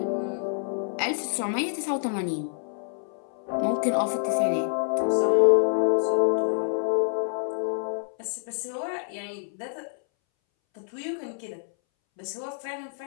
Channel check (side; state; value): right; silent; 60 dB below the other